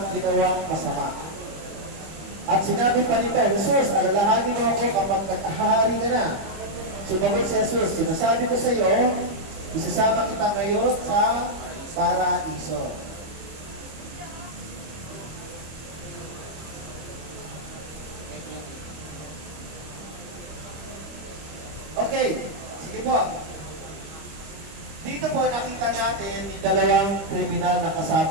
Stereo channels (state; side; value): late; left; 25 ms